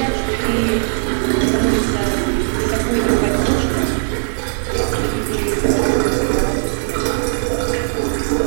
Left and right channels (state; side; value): silent; left; digital silence